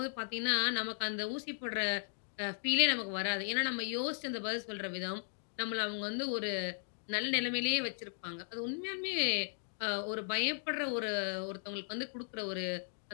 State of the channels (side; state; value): right; silent; digital silence